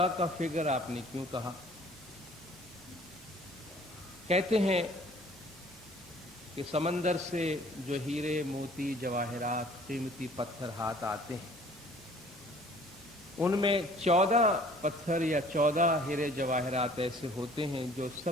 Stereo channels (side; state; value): both; normal; correlation 0.53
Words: का फिगर आपने क्यों कहा? कहते हैं कि समंदर से जो हीरे मोती जवाहरात कीमती पत्थर हाथ आते हैं उनमें 14 पत्थर या 14 हीरे जवाहरात ऐसे होते हैं जो